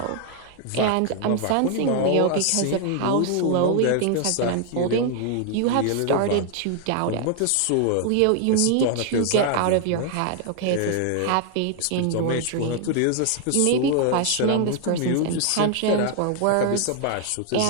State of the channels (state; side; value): different; both; correlation 0.00